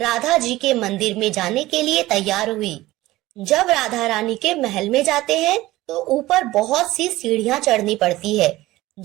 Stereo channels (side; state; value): left; quieter; 17.5 dB